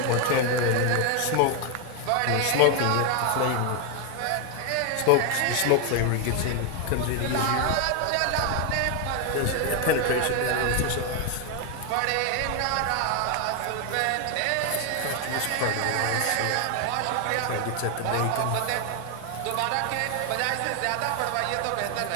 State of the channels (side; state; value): both; different; correlation 0.01